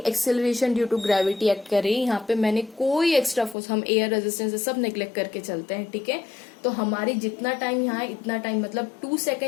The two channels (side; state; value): right; drops out; at 3.6 s